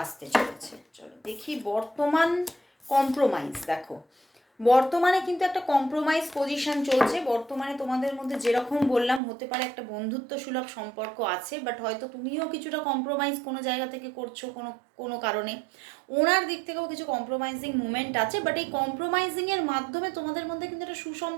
আসতে চলেছে। চলো দেখি বর্তমান কম্প্রোমাইজ। দেখো বর্তমানে কিন্তু একটা কম্প্রোমাইজ পজিশন চলছে। বর্তমানে তোমাদের মধ্যে যেরকম বললাম, হতে পারে একটা বন্ধুত্ব সুলভ সম্পর্ক আছে, বাট হয়তো তুমিও কিছুটা কম্প্রোমাইজ কোনো জায়গা থেকে করছো কোনো কারণে। ওনার দিক থেকেও কিছু কম্প্রোমাইজিং মুভমেন্ট আছে, বাট এই কম্প্রোমাইজিংয়ের মাধ্যমে তোমাদের মধ্যে কিন্তু একটা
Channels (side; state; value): left; drops out; at 9.2 s